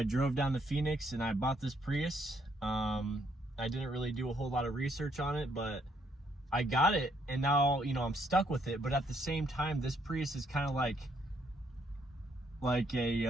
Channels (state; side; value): normal; both; correlation 0.71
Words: drove down to Phoenix and I bought this Prius. I didn't really do a whole lot of research on it, but I got it, and now I'm stuck with it. But at the same time, this Prius is kind of like